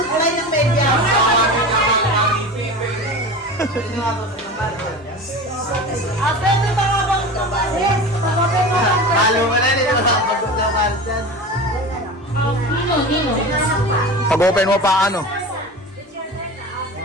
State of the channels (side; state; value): both; normal; correlation 0.31